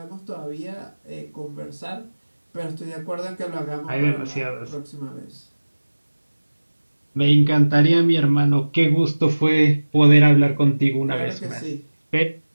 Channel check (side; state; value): both; inverted; correlation -1.00